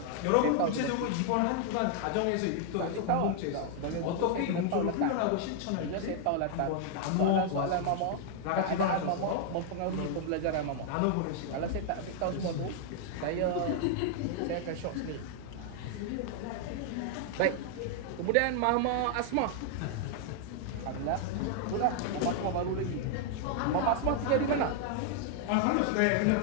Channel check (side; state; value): both; different; correlation 0.00